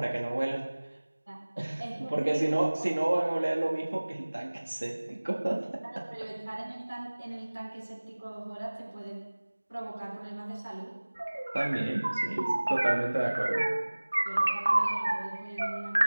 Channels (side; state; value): both; inverted; correlation -1.00